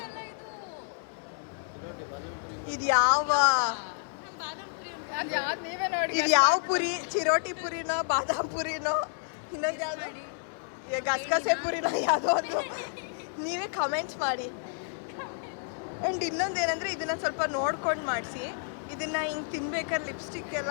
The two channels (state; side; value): silent; right; 58 dB below the other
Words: ಇದು ಯಾವ ಪುರಿ? ಚಿರೋಟಿ ಪುರಿನೋ ಬಾದಾಮ್ ಪುರಿನೋ ಇನ್ನೊಂದು ಯಾವುದು ಗಸಗಸೆ ಪುರಿನೋ ಯಾವುದೋ ಒಂದು? ನೀವೇ ಕಮೆಂಟ್ಸ್ ಮಾಡಿ. ಆ್ಯಂಡ್ ಇನ್ನೊಂದು ಏನಂದರೆ, ಇದನ್ನು ಸ್ವಲ್ಪ ನೋಡ್ಕೊಂಡು ಮಾಡಿಸಿ. ಇದನ್ನು ಹಿಂಗೆ ತಿನ್ಬೇಕಾದ್ರೆ ಲಿಪ್ಸ್ಟಿಕ್